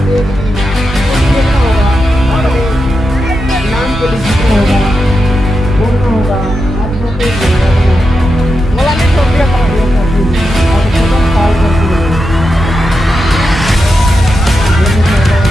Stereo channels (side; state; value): both; normal; correlation 0.88